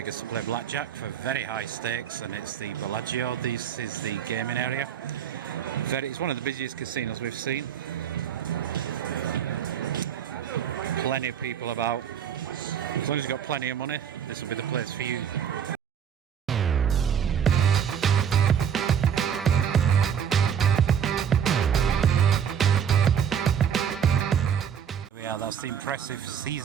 to play blackjack for very high stakes, and it's the Bellagio. This is the gaming area. It's one of the busiest casinos we've seen. Plenty of people about. As long as you've got plenty of money, this will be the place for you. Yeah, that's the impressive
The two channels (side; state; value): left; quieter; 8.2 dB